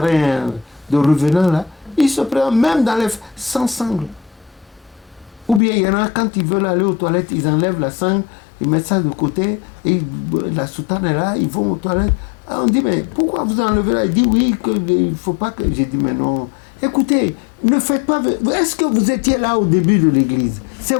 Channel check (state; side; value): drops out; right; at 5.6 s